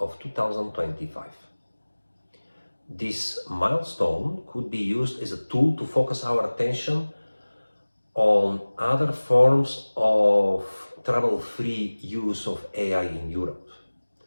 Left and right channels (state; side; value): inverted; both; correlation -1.00